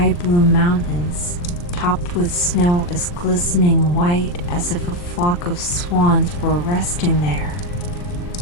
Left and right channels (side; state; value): right; late; 40 ms